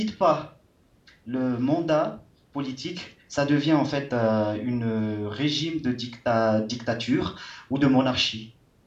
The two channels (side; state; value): both; identical; correlation 1.00